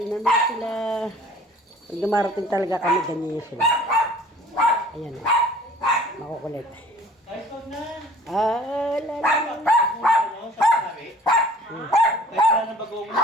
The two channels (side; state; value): both; normal; correlation 0.50